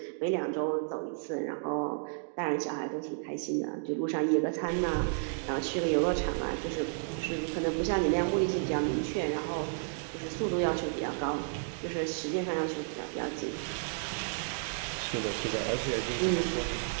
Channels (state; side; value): silent; left; digital silence